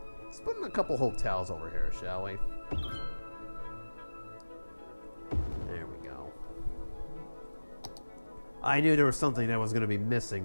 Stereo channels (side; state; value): both; inverted; correlation -1.00